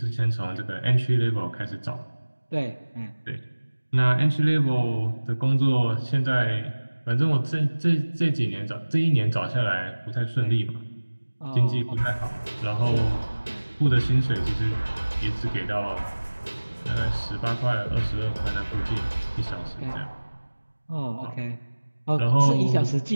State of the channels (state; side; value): inverted; both; correlation -1.00